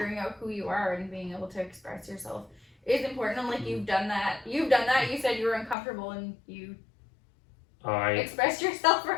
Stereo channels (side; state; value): right; drops out; at 5.8 s